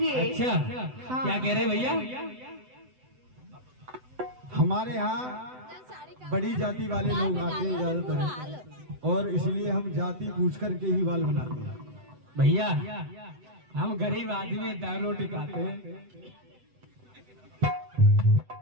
अच्छा हाँ। क्या कह रहे भैया? हमारे यहाँ बड़ी जाति वाले लोग आते हैं ज्यादातर, और इसलिए हम जाति पूछ करके ही बाल बनाते हैं। भैया हम गरीब आदमी दाल रोटी खाते हैं।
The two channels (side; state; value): left; late; 7.9 ms